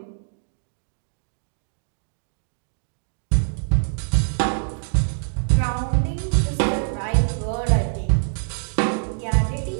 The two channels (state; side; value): silent; left; digital silence